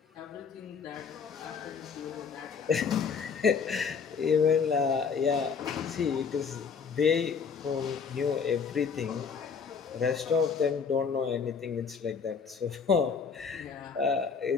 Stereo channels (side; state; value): right; quieter; 5.9 dB